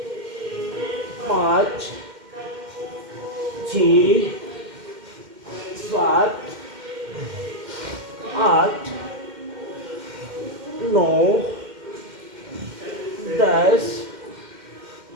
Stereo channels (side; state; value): left; late; 2.1 ms